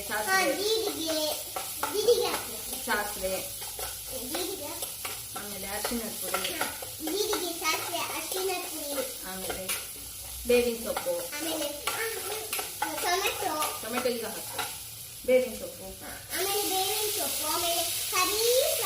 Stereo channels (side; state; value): both; identical; correlation 1.00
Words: ಸಾಸಿವೆ, ಆಮೇಲೆ ಅರಿಶಿಣದ ಪುಡಿ, ಆಮೇಲೆ ಬೇವಿನ ಸೊಪ್ಪು, ಟೊಮೆಟೊ ಈಗ ಹಾಕು, ಬೇವಿನ ಸೊಪ್ಪು, ಆಮೇಲೆ ಕರಿ